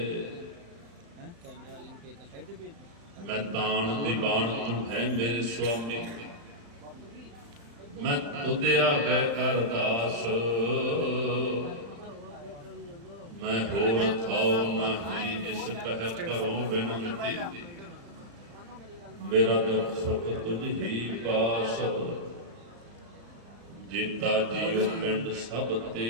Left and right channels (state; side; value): late; left; 35 ms